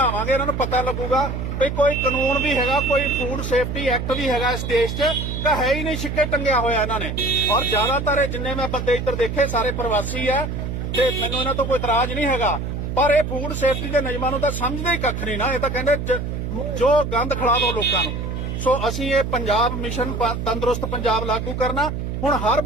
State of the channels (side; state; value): right; noise; hum, 4 dB below the sound